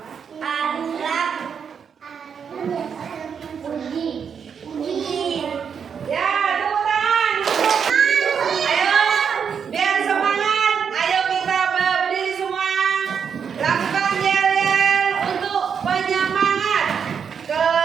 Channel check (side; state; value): left; quieter; 7.0 dB